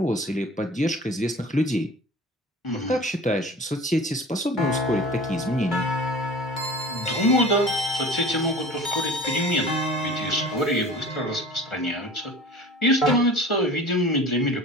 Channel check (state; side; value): normal; both; correlation 0.40